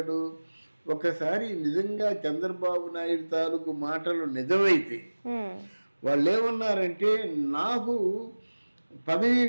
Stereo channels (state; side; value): inverted; both; correlation -1.00